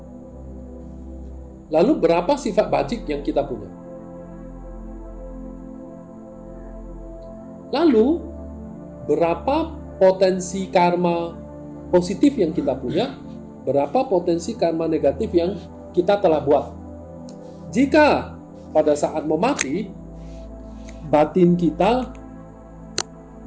Lalu berapa sifat bajik yang kita punya? Lalu berapa potensi karma positif yang kita punya? Berapa potensi karma negatif yang kita telah buat? Jika pada saat mau mati, batin kita,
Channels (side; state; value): both; identical; correlation 1.00